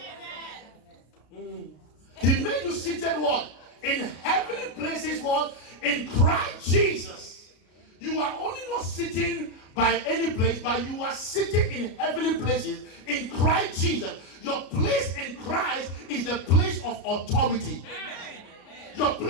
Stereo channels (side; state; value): right; late; 33 ms